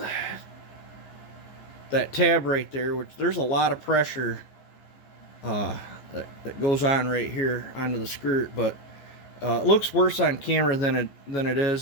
That tab right there, which there's a lot of pressure that goes on right here onto the skirt, but it looks worse on camera than it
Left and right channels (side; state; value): right; late; 14 ms